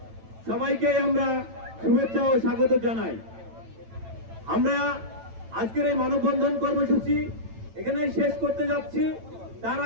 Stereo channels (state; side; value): late; left; 9.0 ms